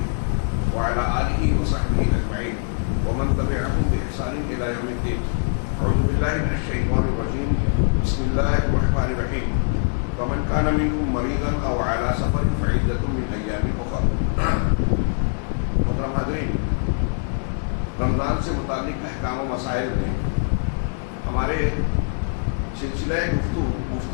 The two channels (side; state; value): right; silent; 63 dB below the other